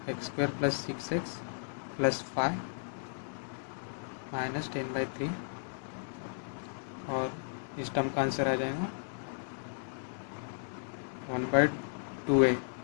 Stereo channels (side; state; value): right; silent; digital silence